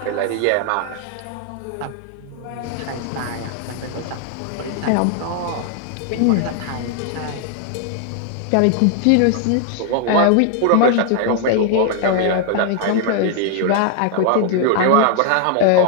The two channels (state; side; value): different; both; correlation 0.00